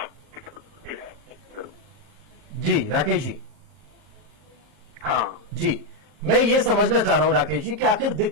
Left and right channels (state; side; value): late; left; 40 ms